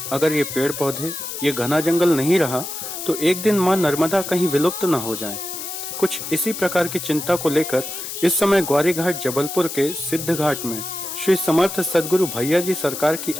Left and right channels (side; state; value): left; noise; hiss, 7 dB below the sound